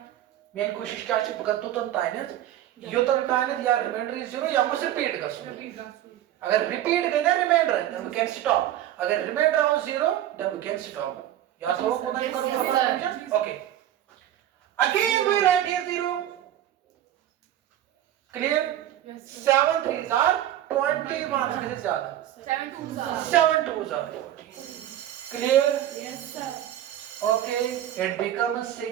मेन कोशिश क्या है पकड़ तो ताइनस यो तो ताइनस या रिमाइंडर इज 0 या मुझे रिपीट कर अगर रिपीट गए ना remainder then we can stop अगर रिमाइंडर हो 0 देन वी कैन स्टॉप या तो को नहीं करो okay again we write here 0 clear yes 7 3s are 21 से ज्यादा 7 2s are 40 clear yes sir okay it becomes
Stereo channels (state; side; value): quieter; left; 12.2 dB